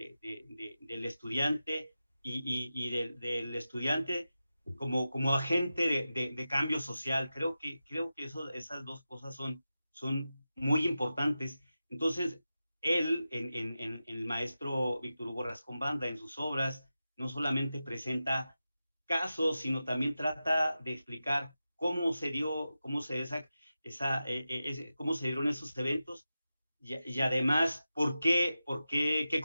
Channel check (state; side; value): inverted; both; correlation -0.92